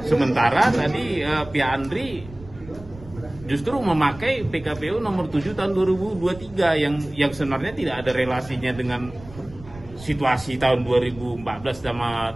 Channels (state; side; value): noise; right; rumble, 18 dB below the sound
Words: Sementara tadi pihak Andri justru memakai PKPU nomor 7 tahun 2023 yang sebenarnya tidak ada relasinya dengan situasi tahun 2014 sama